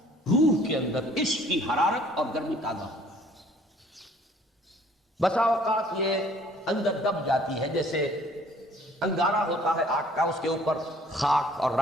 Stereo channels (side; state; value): both; normal; correlation 0.57